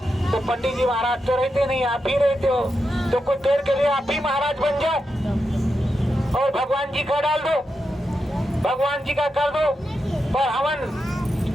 तो पंडित जी महाराज तो रहते नहीं, आप ही रहते हो, तो कुछ देर के लिए आप ही महाराज बन जाओ और भगवान जी का डाल दो, भगवान जी का कर दो। पर हवन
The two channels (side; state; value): both; normal; correlation 0.87